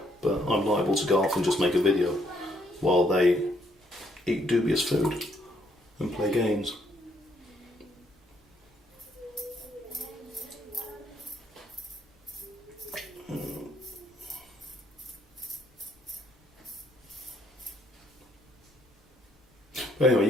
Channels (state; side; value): normal; both; correlation 0.71